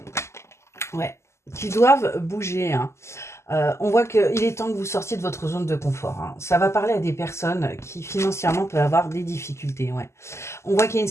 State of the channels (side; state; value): right; late; 0.13 ms